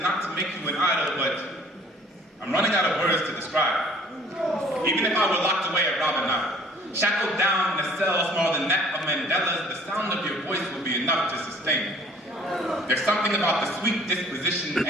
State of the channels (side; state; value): both; normal; correlation 0.53